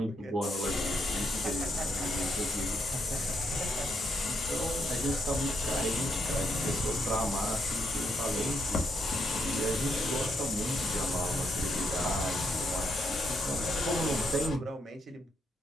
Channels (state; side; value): normal; both; correlation 0.78